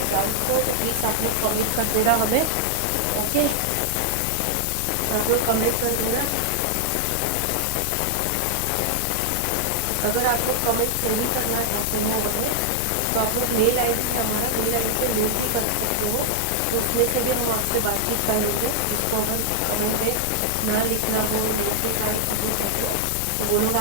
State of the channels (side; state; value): both; different; correlation 0.00